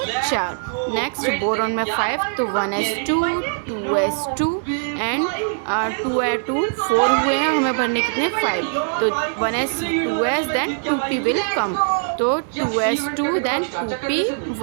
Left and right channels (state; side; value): silent; left; digital silence